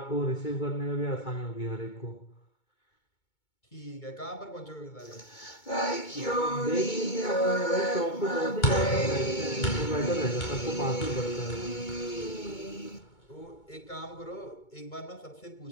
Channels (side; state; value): right; late; 2.2 ms